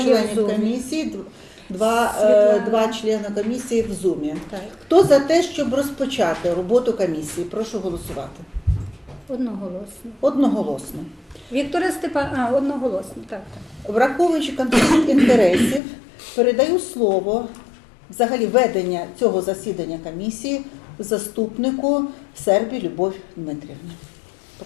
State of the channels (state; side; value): drops out; right; at 15.8 s